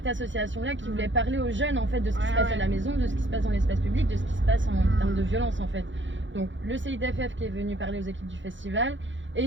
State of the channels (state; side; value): late; left; 0.55 ms